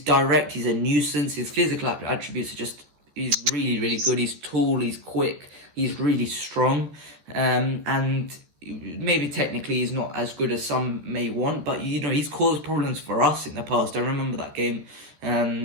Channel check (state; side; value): late; left; 13 ms